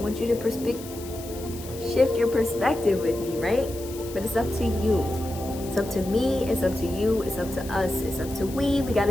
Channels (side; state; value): left; noise; hiss, 15 dB below the sound